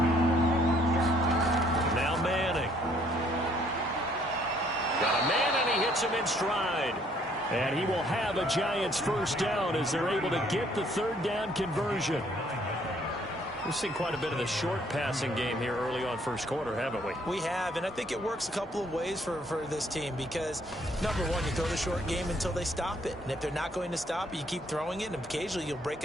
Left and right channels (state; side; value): normal; both; correlation 0.64